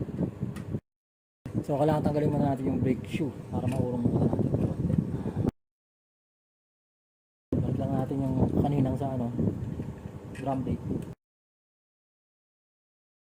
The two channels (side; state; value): both; identical; correlation 1.00